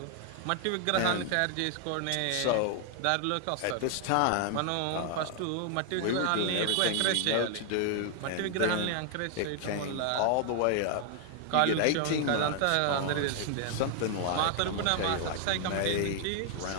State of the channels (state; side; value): different; both; correlation 0.00